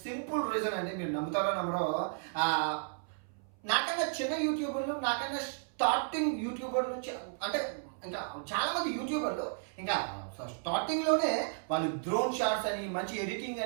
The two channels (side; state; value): left; silent; 55 dB below the other